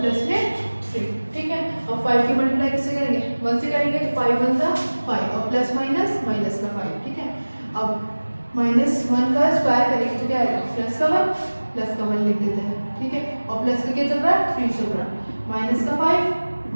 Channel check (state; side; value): inverted; both; correlation -1.00